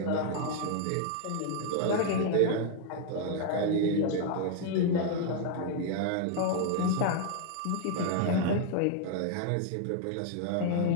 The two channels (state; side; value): different; both; correlation 0.00